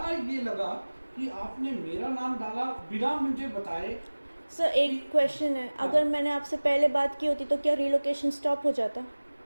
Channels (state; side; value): inverted; both; correlation -1.00